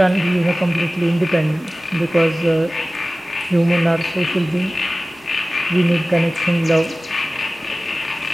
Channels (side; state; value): both; normal; correlation 0.97